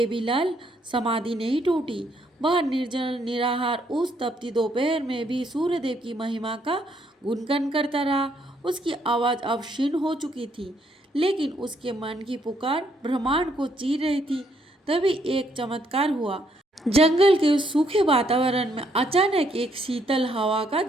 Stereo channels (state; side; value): normal; both; correlation 0.72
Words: समाधि नहीं टूटी। वह निर्जल निराहार उस तपती दोपहर में भी सूर्यदेव की महिमा का गुणगान करता रहा। उसकी आवाज अब क्षीण हो चुकी थी, लेकिन उसके मन की पुकार ब्रह्मांड को चीर रही थी। तभी एक चमत्कार हुआ। जंगल के सूखे वातावरण में अचानक एक शीतल हवा का